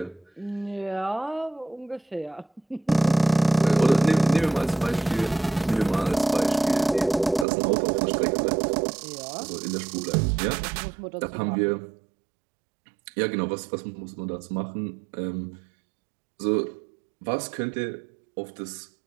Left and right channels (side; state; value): left; drops out; at 7.5 s